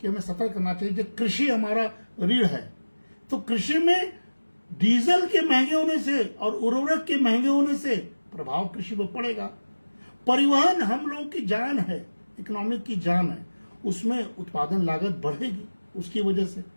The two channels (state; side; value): inverted; both; correlation -1.00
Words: हमें सतर्क करना चाहिए। जो कृषि हमारा रीढ़ है, तो कृषि में डीजल के महंगे होने से और उर्वरक के महंगे होने से प्रभाव कृषि पर पड़ेगा। परिवहन हम लोगों की जान है, इकोनॉमिक की जान है, उसमें उत्पादन लागत बढ़ेगी उसकी वजह से।